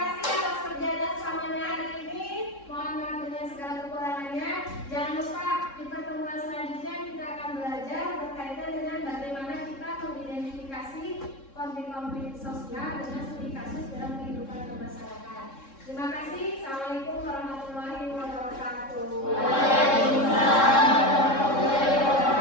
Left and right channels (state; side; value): late; right; 3.7 ms